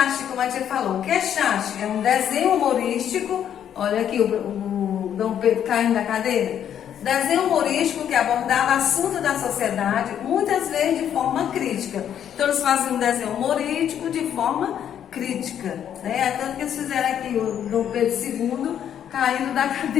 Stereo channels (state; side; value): quieter; right; 9.5 dB